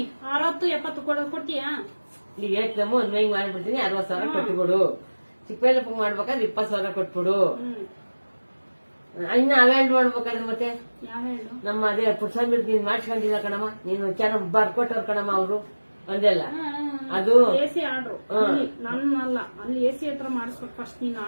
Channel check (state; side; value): inverted; both; correlation -1.00